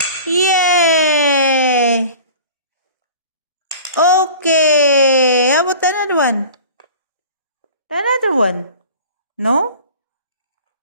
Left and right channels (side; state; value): both; inverted; correlation -0.41